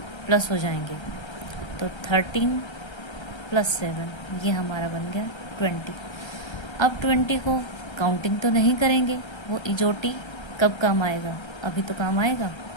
प्लस हो जाएंगे। तो 13 + 7 ये हमारा बन गया 20। अब 20 को काउंटिंग तो नहीं करेंगे, वो इजोटी कब काम आएगा, अभी तो काम आएगा।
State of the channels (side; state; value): right; late; 1.3 ms